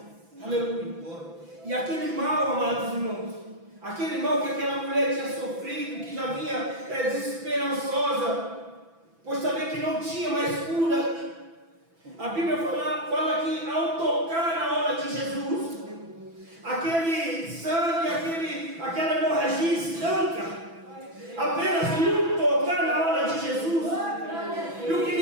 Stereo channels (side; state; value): left; late; 6.0 ms